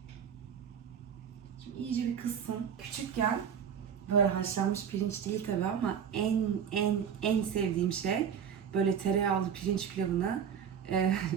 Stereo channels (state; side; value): quieter; left; 7.8 dB